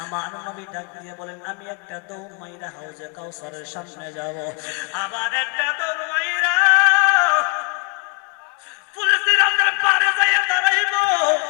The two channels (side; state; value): right; quieter; 35.9 dB